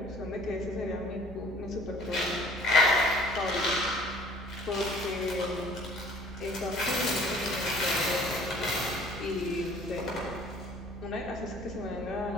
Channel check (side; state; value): both; normal; correlation 0.52